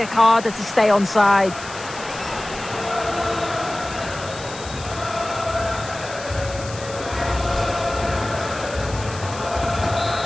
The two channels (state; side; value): noise; left; hiss, 14 dB below the sound